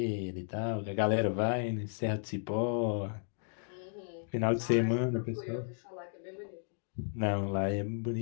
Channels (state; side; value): silent; right; digital silence